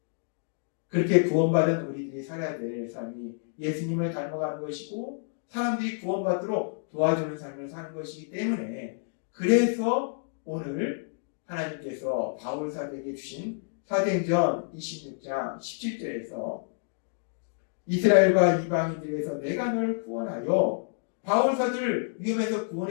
그렇게 구원받은 우리들이 살아야 될 삶이 예수님을 닮아가는 것이고, 사람들이 구원받도록 도와주는 삶을 사는 것이기 때문에, 그래서 오늘 하나님께서 바울 사도에게 주신 사도행전 26장 17절에서 이스라엘과 이방인들에서 내가 너를 구원하여, 바울 사도를 위험에서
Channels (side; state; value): right; silent; digital silence